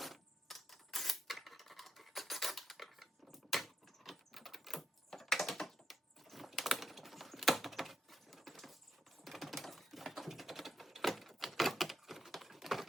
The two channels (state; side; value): normal; both; correlation 0.83